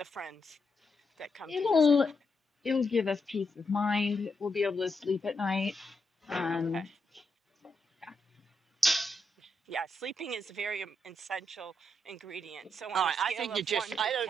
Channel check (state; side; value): normal; both; correlation 0.82